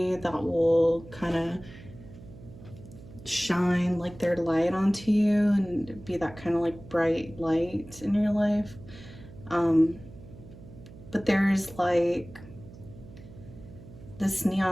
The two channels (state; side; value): noise; right; hum, 18 dB below the sound